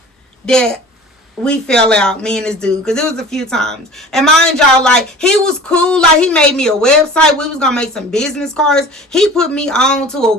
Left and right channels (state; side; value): normal; both; correlation 0.42